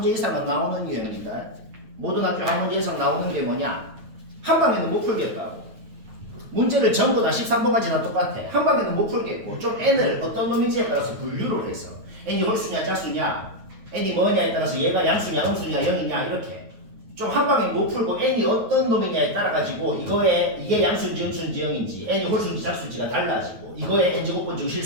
이상은 나오는 유형이다. 모든 학교에 한 문제 이상 나오는 게 뭐냐? 한 방에는 못 풀겠다고. 문제를 전부 다 13번까지 다 똑같아. 한 방에는 못 풀겠고 좀 n을 어떤 놈인지에 따라서 분류를 해서 n이 홀수냐 짝수냐, n이 뭐냐에 따라서 얘가 양수냐 음수냐 0이냐 이렇게 좀 한 방에 못 풀고 n이 어떤 놈이냐에 따라 가지고 이게 양수인지 음수인지 0인지 n이 홀수인지 짝수인지가 달라지고 이거의 n제곱번 중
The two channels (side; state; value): left; late; 9.2 ms